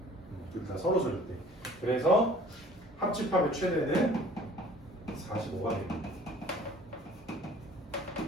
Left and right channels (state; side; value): normal; both; correlation 0.50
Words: 둘 다 서로 줄 때. 그래서 합집합의 최대는 45가 됩니다.